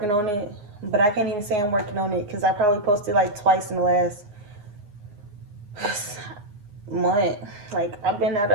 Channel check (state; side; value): late; left; 9.5 ms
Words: on it, but I can't even say I'm working on it because I probably posted like twice in the last month. Like, I've been at